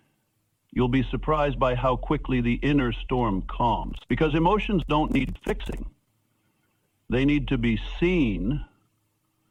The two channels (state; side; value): identical; both; correlation 1.00